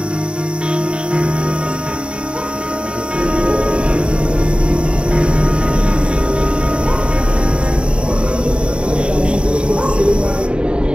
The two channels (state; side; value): late; left; 0.054 ms